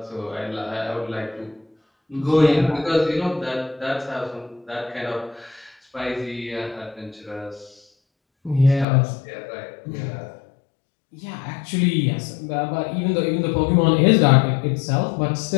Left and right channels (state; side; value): drops out; right; at 8.8 s